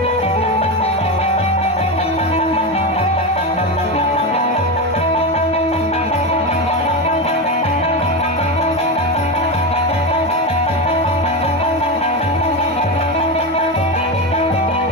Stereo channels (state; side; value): normal; both; correlation 0.16